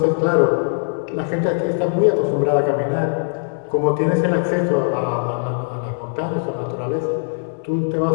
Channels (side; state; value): right; silent; digital silence